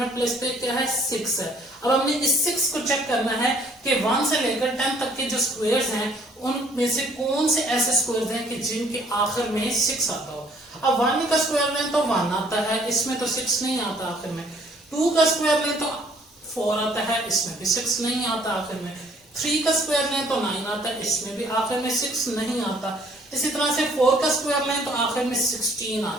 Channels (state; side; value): normal; both; correlation 0.60